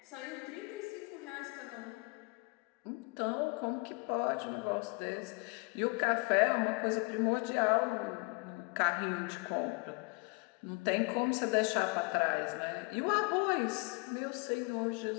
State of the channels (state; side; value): quieter; right; 30.3 dB